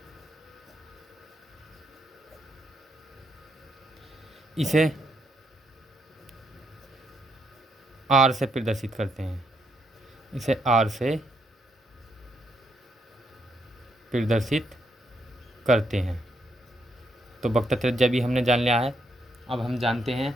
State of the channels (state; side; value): normal; both; correlation 0.77